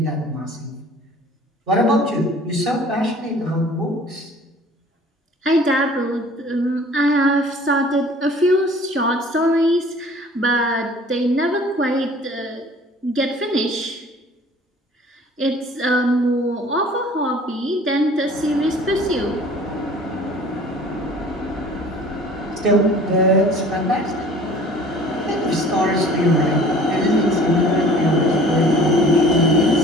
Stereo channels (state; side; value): normal; both; correlation 0.49